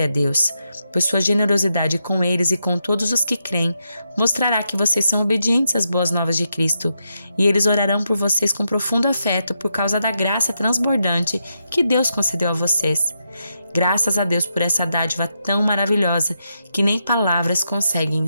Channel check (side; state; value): both; inverted; correlation -0.83